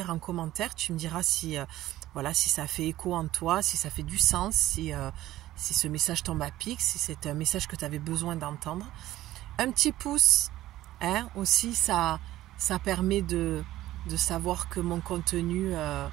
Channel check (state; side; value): quieter; left; 15.0 dB